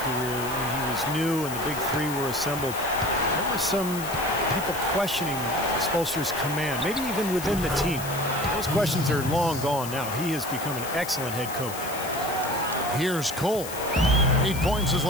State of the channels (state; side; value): noise; left; hiss, 10 dB below the sound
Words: career, when he was new and the big three were assembled, there were some people questioning Spoelstra's command, maybe even within the team. Those questions are long gone now. He has become an excellent head coach. Here's Cole. 8 points his